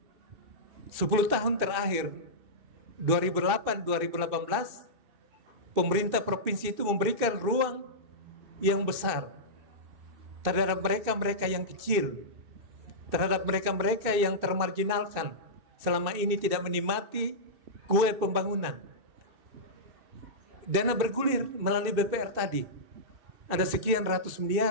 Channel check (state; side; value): late; left; 2.7 ms